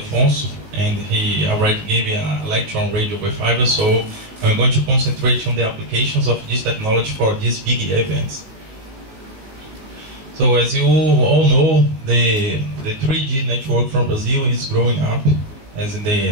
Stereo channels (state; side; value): late; left; 18 ms